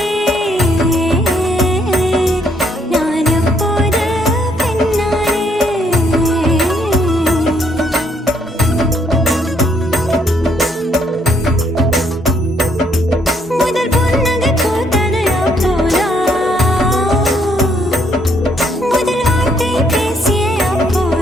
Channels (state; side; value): normal; both; correlation 0.70